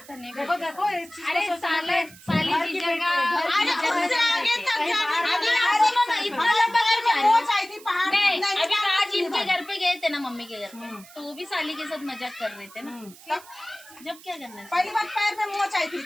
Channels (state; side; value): noise; right; hiss, 21 dB below the sound